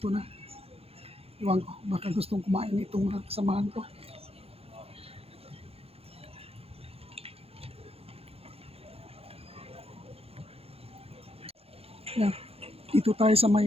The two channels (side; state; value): left; late; 0.29 ms